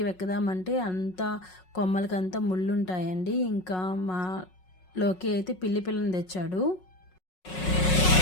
వెక్కదామంటే అంతా కొమ్మలకంతా ముళ్ళు ఉంటాయండి. ఇంకా మా లోకి అయితే పిల్లని తెచ్చాడు.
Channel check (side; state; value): right; late; 5.4 ms